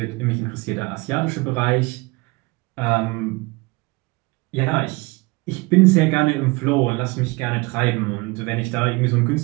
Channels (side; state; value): left; quieter; 25.2 dB